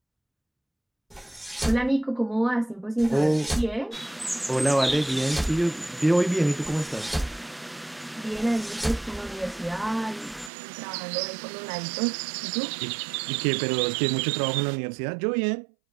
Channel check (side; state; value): left; drops out; at 10.5 s